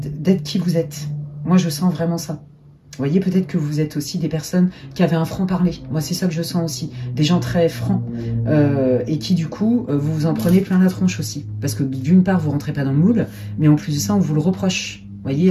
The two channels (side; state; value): both; identical; correlation 1.00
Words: d'être qui vous êtes. Moi, je sens vraiment ça. Vous voyez, peut-être que vous êtes aussi des personnes qui avaient un franc-parler. Moi, c'est ça que je sens aussi. Des gens très francs. Et qui, du coup, vous vous en prenez plein la tronche aussi. Parce que, d'une part, vous ne rentrez pas dans le moule. Mais en plus de ça, on vous le reproche. Vous